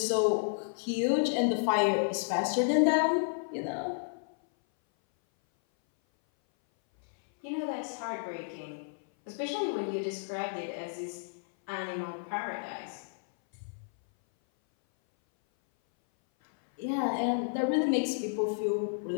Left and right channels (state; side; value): silent; right; 57 dB below the other